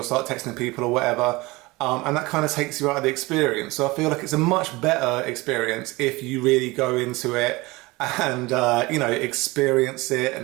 start texting people or whatever. And that kind of takes you out of the experience. So I feel like it's a much better experience if you really go into it and, experience it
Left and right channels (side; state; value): left; quieter; 22.5 dB